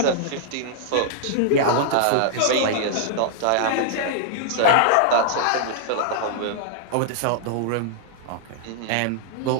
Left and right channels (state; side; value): different; both; correlation -0.01